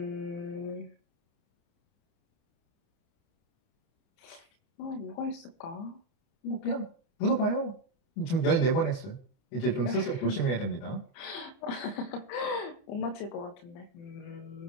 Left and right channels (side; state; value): right; late; 29 ms